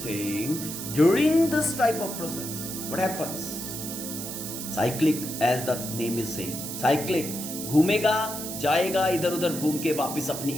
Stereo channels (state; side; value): noise; right; hiss, 7 dB below the sound